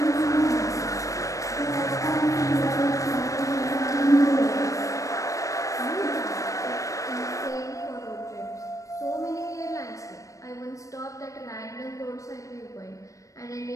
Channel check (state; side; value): late; right; 0.16 ms